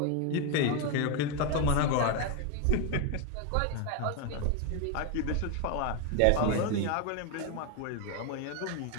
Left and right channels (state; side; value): different; both; correlation 0.02